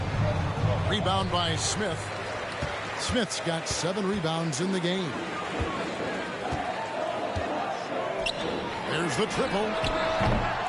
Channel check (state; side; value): identical; both; correlation 1.00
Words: Rebound by Smith. Smith's got 7 rebounds in the game. There's the triple.